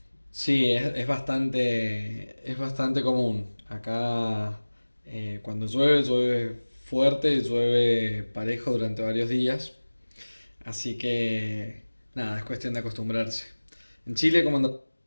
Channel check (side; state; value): both; inverted; correlation -1.00